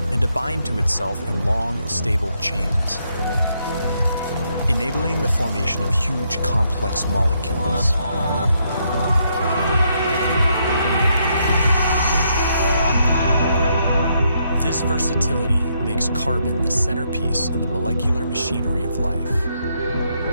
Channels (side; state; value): both; inverted; correlation -0.76